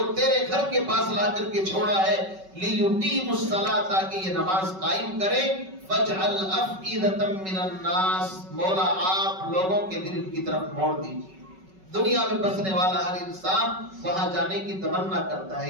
تیرے گھر کے پاس لا کر کے چھوڑا ہے، لیقیم الصلاۃ، تاکہ یہ نماز قائم کرے، فاجعل افئدۃ من الناس، مولا آپ لوگوں کے دل کی طرف موڑ دیجیے۔ دنیا میں بسنے والا ہر انسان وہاں جانے کی تمنا کرتا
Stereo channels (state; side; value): late; left; 5.3 ms